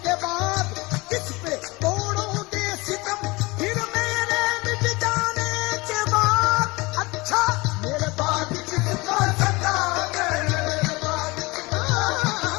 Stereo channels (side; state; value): right; quieter; 23.6 dB